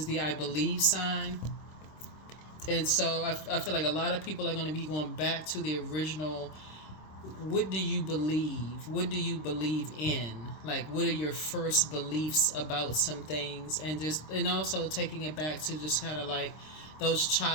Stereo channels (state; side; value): late; right; 26 ms